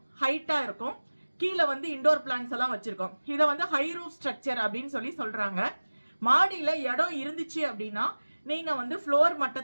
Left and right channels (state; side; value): inverted; both; correlation -1.00